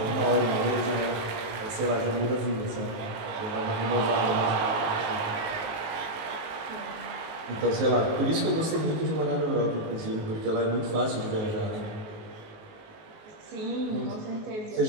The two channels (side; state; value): left; late; 19 ms